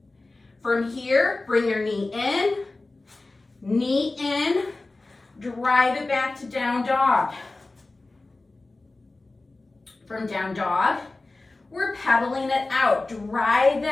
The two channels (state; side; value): quieter; right; 3.2 dB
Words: From here, bring your knee in, drive it back to down dog. From down dog, we're pedaling it out. Drive